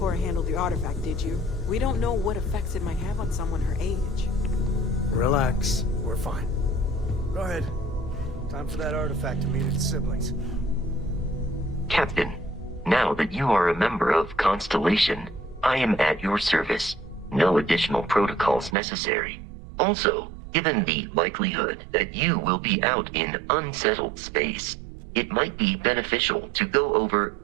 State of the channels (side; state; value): left; drops out; at 18.8 s